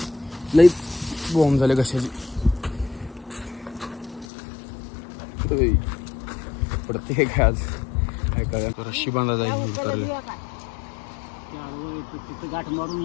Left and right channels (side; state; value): right; drops out; at 4.2 s